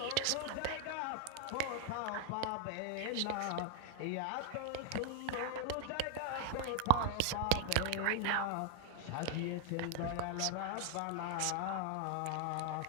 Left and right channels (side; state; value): both; different; correlation 0.00